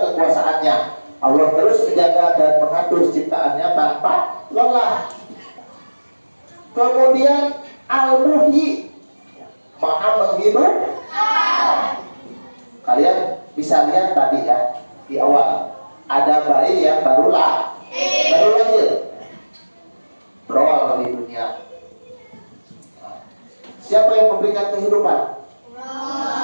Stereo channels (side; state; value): both; inverted; correlation -1.00